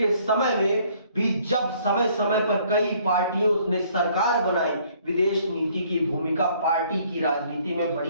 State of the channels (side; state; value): both; inverted; correlation -0.61